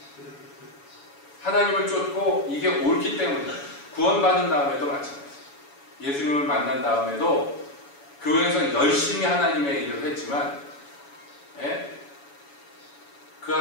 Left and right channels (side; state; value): right; late; 7.1 ms